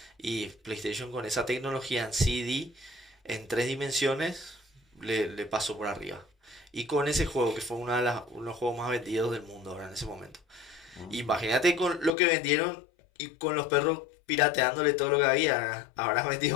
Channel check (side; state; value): right; drops out; at 12.2 s